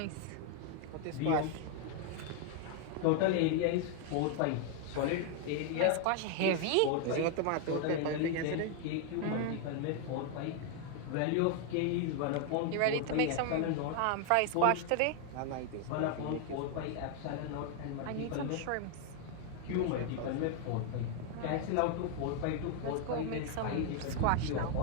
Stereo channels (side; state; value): both; different; correlation 0.01